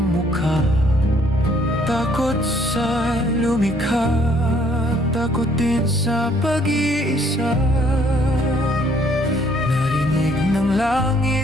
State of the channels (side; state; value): both; normal; correlation 0.64